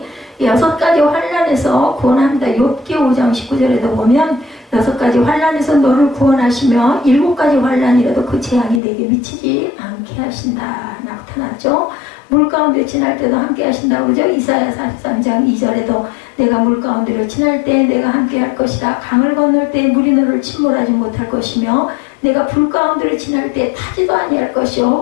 6가지 환난에서 구원합니다. 욥기 5장 19절에도 보면 6가지 환난에서 너를 구원하시며 7가지 환난이라도 그 재앙이 내게 미치지 않게 하신다 나타났죠. 물 가운데 지날 때도 함께 하신다고 그러죠. 이사야 43장 2절에도 내가 물 가운데로 지날 때 내가 함께 할 것이다. 강을 건널 때 물이 너를 침몰하지 못할 것이며 내가 불 가운데로 지날 때 타지도 아니할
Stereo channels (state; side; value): drops out; right; at 8.8 s